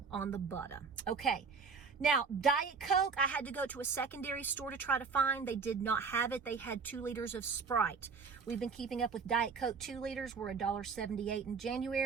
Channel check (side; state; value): left; quieter; 5.3 dB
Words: on the butter. Okay. Now, Diet Coke, I had to go to a secondary store to try to find. They did not have it. They had 2 liters of Sprite. We've been keeping up with Diet Coke. 2 liters were $1.78 in